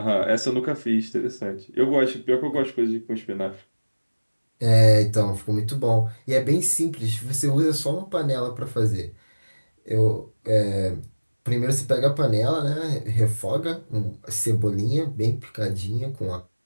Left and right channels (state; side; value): inverted; both; correlation -1.00